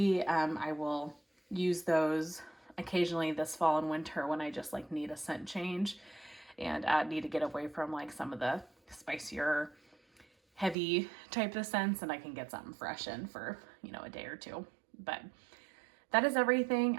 I will use those occasionally this fall and winter when I just like need a scent change and need to get away from like some of the spicier heavy type of scents, and I can get something fresh in for, you know, a day or two. But that is everything.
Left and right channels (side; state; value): left; drops out; at 10.8 s